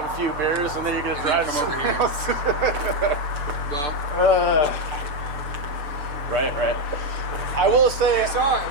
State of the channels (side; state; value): left; late; 6.8 ms